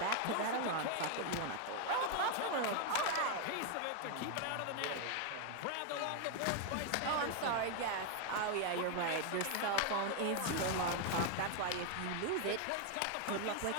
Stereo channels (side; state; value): both; different; correlation 0.01